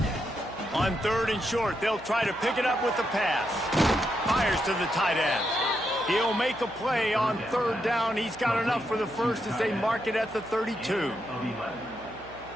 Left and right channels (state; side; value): noise; right; hum, 20 dB below the sound